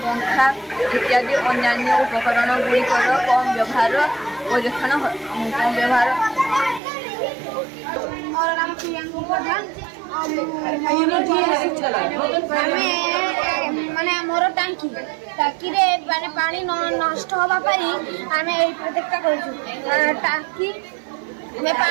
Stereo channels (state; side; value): drops out; left; at 6.8 s